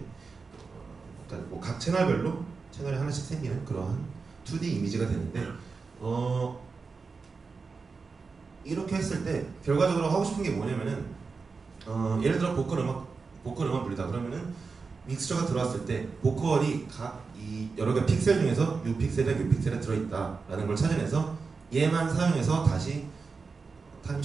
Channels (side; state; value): left; quieter; 4.6 dB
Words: 그러니까 뭐 각 채널별로 채널이 하나씩 생기는 그러한 2D 이미지가 되는데 이렇게 했을 때 결과적으로 하고 싶은 게 뭐냐면은 예를 들어 보컬 음악 불리다 그러면은 믹스처가 들어왔을 때 보컬이 각 이 여러 개 픽셀 중에서 이 픽셀에 이 픽셀에 들어있다라는 걸 찾아내서 얘만 사용해서 다시 타임